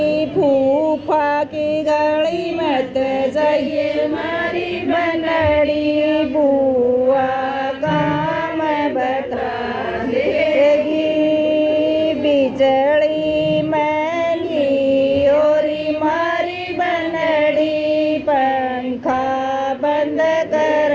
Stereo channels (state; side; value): identical; both; correlation 1.00